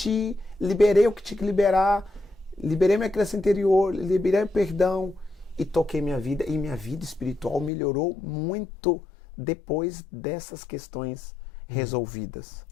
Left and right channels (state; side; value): drops out; right; at 7.7 s